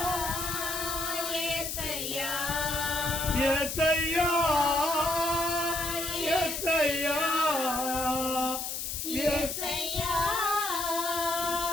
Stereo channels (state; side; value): noise; left; hiss, 4 dB below the sound